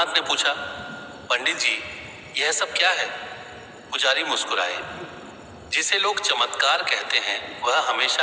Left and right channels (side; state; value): both; identical; correlation 1.00